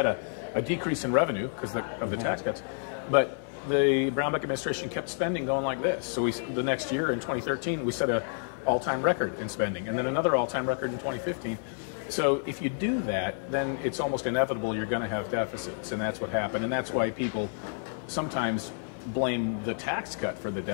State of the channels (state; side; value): silent; right; 58 dB below the other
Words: a decrease in revenue because of the tax cuts, but the Brownback administration kept spending going like this. So the next year in 2013, we set an all-time record in spending, and then another all-time record in 2015. So if you do that, then it's almost inevitable you're going to have deficits, and that's what happened. And that's why people sometimes blame the tax cut for the